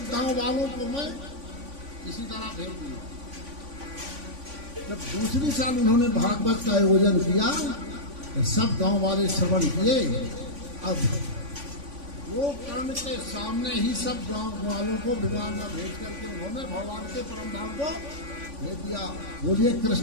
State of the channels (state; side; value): late; left; 3.5 ms